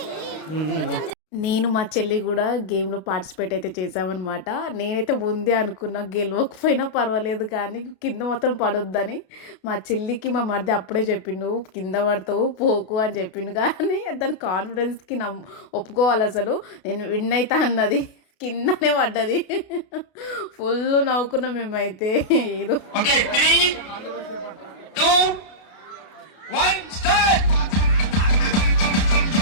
నేను మా చెల్లి కూడా గేమ్లో పార్టిసిపేట్ అయితే చేసామన్నమాట. నేనైతే ఉంది అనుకున్నా, గెలవకపోయినా పర్వాలేదు కానీ కింద మొత్తం పడొద్దని. మా చెల్లికి మా మరిది అప్పుడే చెప్పిండు కింద పడతావు పోకు అని చెప్పిండు, కానీ దాని కాన్ఫిడెన్స్కి ఒప్పుకోవాలి. అసలు నేను విన్ అవుతా అన్నది, కిందనే పడ్డది. ఫుల్ నవ్వుకున్నాం మేమైతే. ఏదో Okay, 3, 2, 1, start.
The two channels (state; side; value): late; right; 32 ms